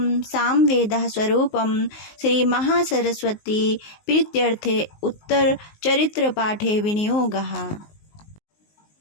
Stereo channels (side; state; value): right; late; 19 ms